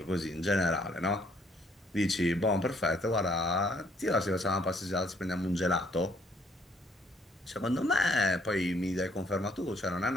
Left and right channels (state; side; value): normal; both; correlation 0.65